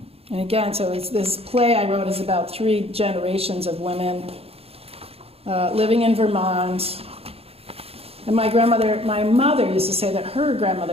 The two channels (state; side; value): late; left; 0.29 ms